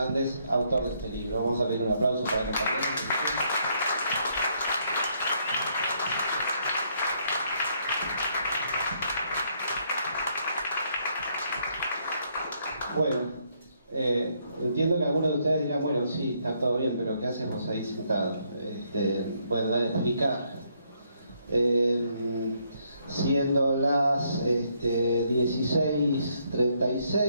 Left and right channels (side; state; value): both; inverted; correlation -0.72